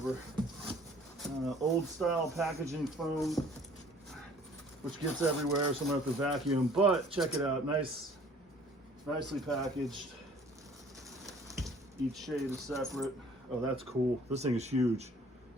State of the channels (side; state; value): both; normal; correlation 0.54